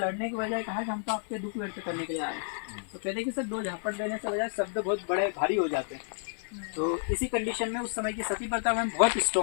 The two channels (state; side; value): silent; right; 57 dB below the other